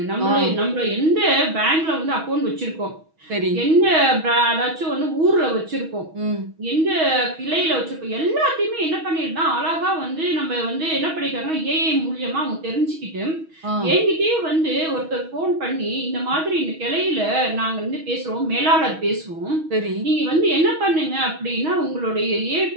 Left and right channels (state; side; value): late; left; 6.3 ms